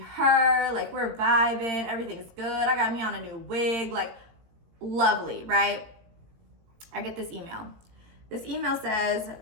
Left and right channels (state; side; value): late; left; 18 ms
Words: Like we're vibing. Everything's good. I got me on a new wig. Like lovely, right? I get this email. This email says,